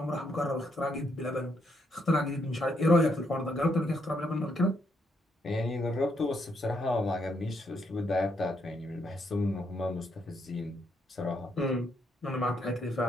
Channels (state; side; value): normal; both; correlation 0.76